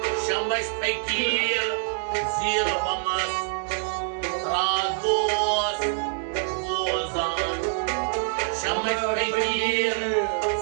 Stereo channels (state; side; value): silent; left; digital silence